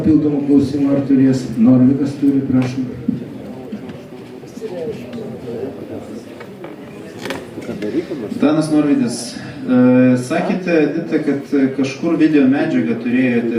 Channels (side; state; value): both; identical; correlation 1.00